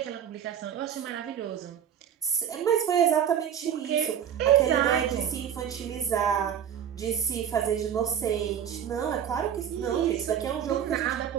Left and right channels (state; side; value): quieter; left; 9.0 dB